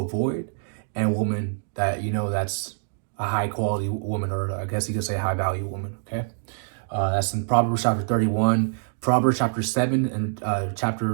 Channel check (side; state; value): left; silent; digital silence